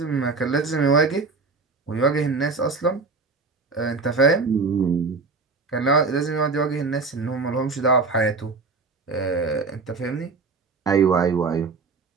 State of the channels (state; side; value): quieter; left; 4.2 dB